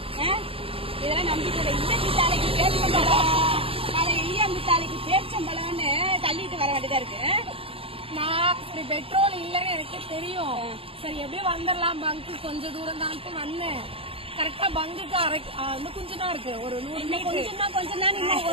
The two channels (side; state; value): left; late; 0.27 ms